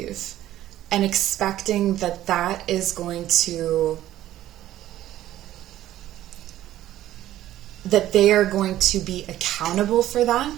and expecting that is going to, that they are going to be accountable for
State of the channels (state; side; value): quieter; left; 13.5 dB